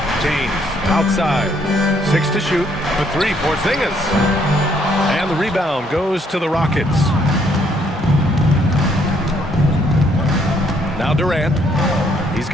James. Outside. 6 to shoot for 3, Porzingis. And the rebound goes to the Rockets. Now Durant. He's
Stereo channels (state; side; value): normal; both; correlation 0.68